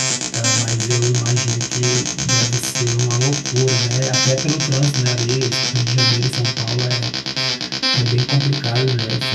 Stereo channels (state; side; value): identical; both; correlation 1.00